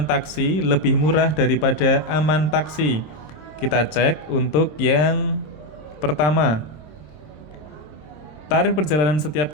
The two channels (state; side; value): late; right; 26 ms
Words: taksi lebih murah daripada aman taksi. Kita cek untuk yang pertama. Tarif perjalanan